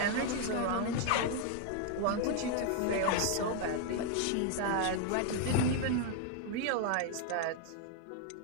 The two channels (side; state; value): both; different; correlation 0.00